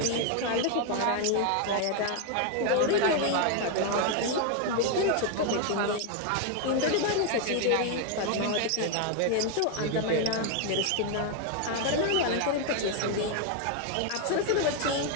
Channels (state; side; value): different; both; correlation 0.01